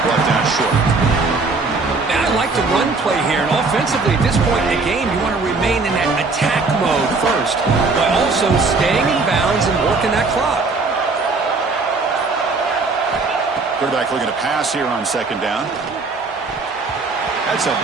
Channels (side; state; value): left; quieter; 3.9 dB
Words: brought down short. Man, I like the run play here, and offensively at this point in the game, you want to remain in that attack mode first, but also staying in bounds and working that clock. Quarterback looking to pass here on 2nd down. That's a